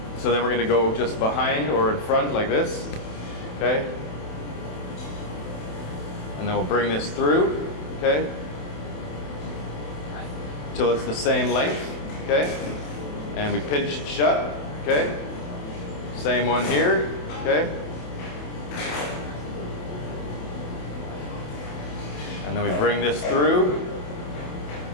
so then we're going to go just behind or in front like this. Okay? And then we'll bring this through. Okay? Till it's the same length. Okay? And we pinch it shut. Okay? Same one here. Okay? And then we bring this through.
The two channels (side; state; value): right; late; 27 ms